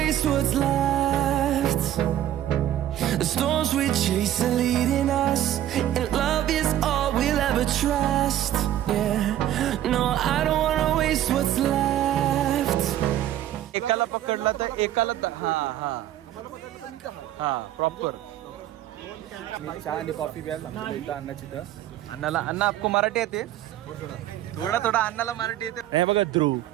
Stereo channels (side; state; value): left; quieter; 12.3 dB